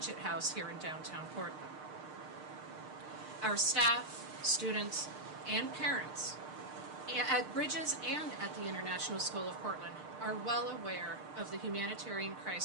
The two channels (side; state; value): left; late; 6.6 ms